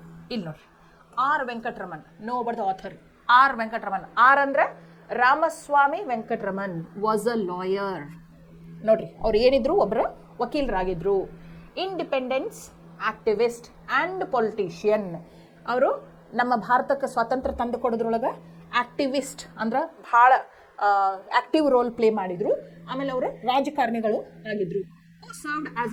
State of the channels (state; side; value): identical; both; correlation 1.00